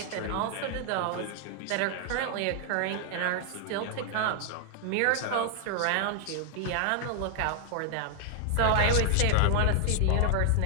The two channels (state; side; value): different; both; correlation 0.00